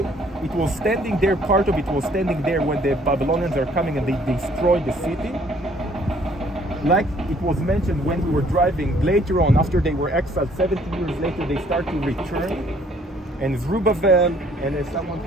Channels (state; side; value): normal; both; correlation 0.61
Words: It was standing there, part of it was standing there when the Babylonians are coming and they destroy the city. Like it was mentioned when we were driving, later on, after they were exiled, 70 years later, they start to return. And Zerubbabel, and someone